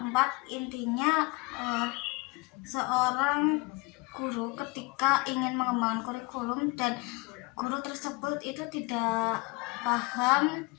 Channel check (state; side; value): quieter; right; 26.6 dB